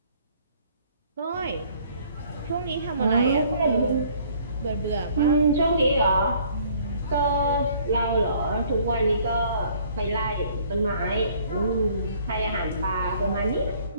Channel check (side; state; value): both; inverted; correlation -0.58